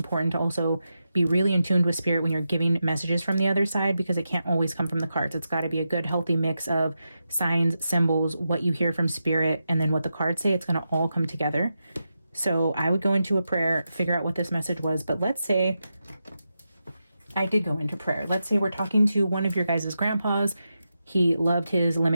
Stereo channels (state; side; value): inverted; both; correlation -0.88